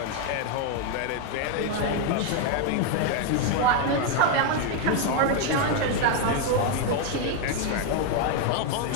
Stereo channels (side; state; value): both; different; correlation 0.01